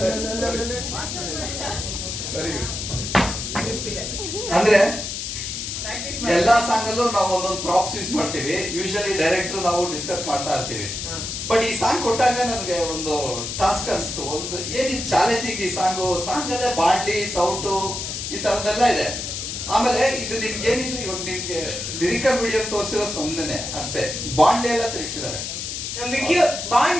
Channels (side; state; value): left; noise; hiss, 5 dB below the sound